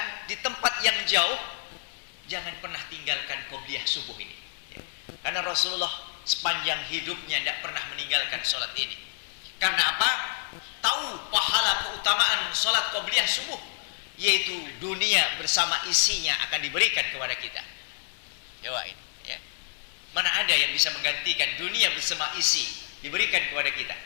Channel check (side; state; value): right; silent; digital silence